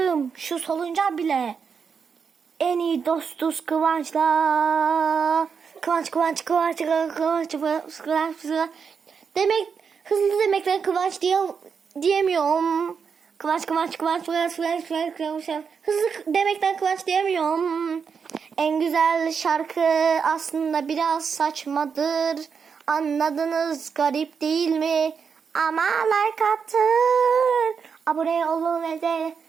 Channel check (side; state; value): left; quieter; 6.2 dB